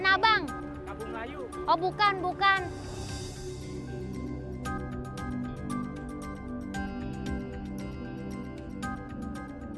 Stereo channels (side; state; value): both; identical; correlation 1.00